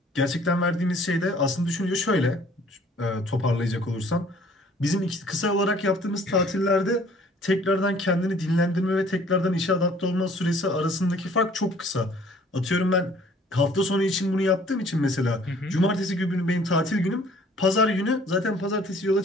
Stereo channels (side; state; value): both; normal; correlation 0.55